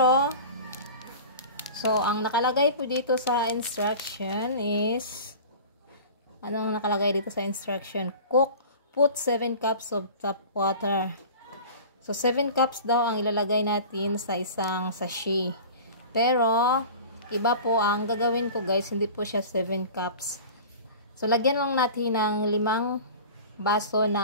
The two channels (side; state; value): both; inverted; correlation -0.38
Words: So, ang nakalagay po dito sa instruction is, anong nakalagay dito sa instruction? Put 7 cups of tap water. So, 7 cups daw ang ilalagay natin sa isang sachet. Pero, iba po ang gagawin ko guys, hindi po siya 7 cups. So, lagyan lang natin ng 5 baso